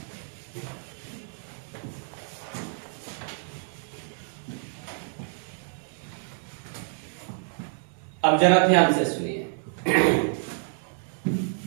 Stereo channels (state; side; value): silent; left; digital silence